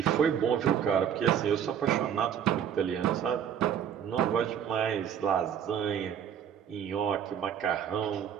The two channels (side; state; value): left; quieter; 8.8 dB